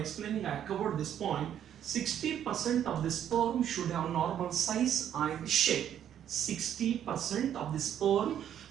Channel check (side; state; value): left; quieter; 10.0 dB